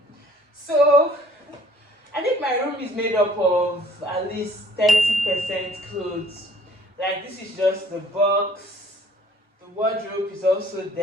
So, I think my room is made up of at least 30% clothes. Like, this is just the box. The wardrobe is also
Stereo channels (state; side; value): normal; both; correlation 0.56